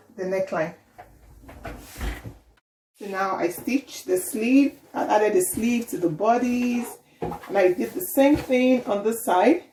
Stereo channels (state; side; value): identical; both; correlation 1.00